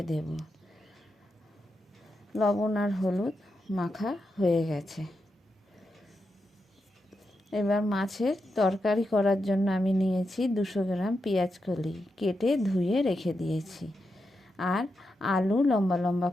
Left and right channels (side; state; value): both; normal; correlation 0.86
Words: দেব। লবণ আর হলুদ মাখা হয়ে গেছে। এবার মাছের তরকারি করার জন্য আমি নিয়েছি 200 গ্রাম পেঁয়াজ কলি, কেটে ধুয়ে রেখে দিয়েছি। আর আলু লম্বা লম্বা